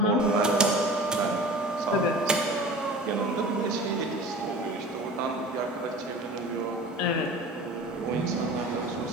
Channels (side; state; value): both; normal; correlation 0.39